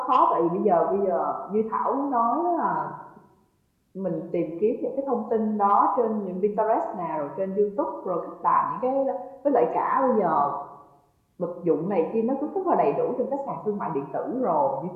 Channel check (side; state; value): both; identical; correlation 1.00